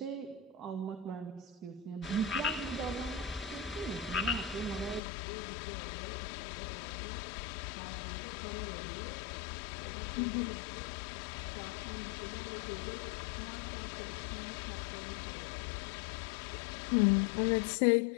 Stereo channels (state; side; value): drops out; right; at 5.0 s